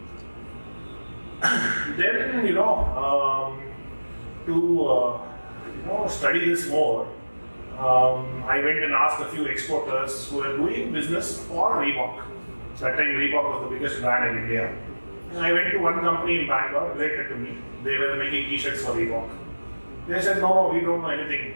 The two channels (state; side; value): inverted; both; correlation -1.00